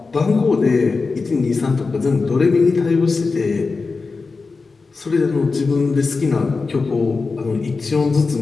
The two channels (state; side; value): quieter; right; 4.2 dB